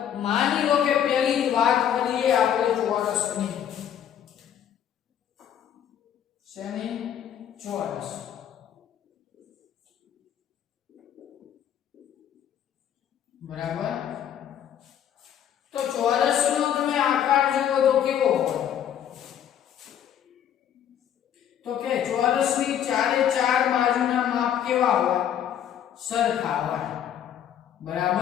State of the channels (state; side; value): quieter; right; 9.7 dB